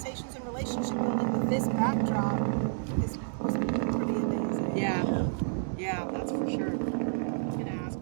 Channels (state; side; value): silent; left; 58 dB below the other